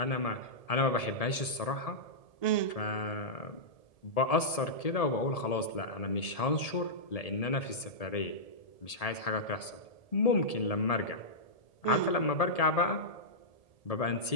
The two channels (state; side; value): late; right; 1.7 ms